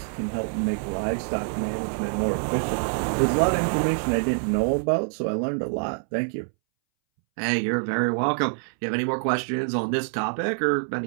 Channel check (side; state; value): left; silent; 61 dB below the other